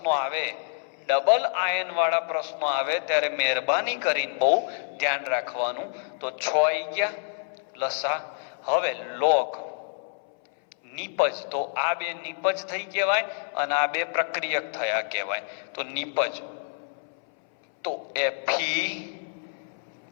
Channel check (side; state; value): right; silent; 60 dB below the other